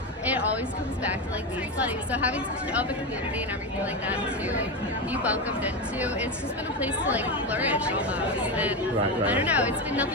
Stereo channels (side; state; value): both; normal; correlation 0.15